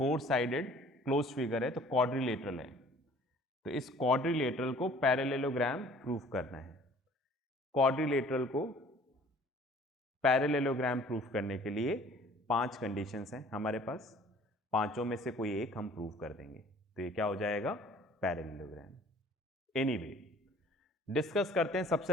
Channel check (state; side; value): normal; both; correlation 0.52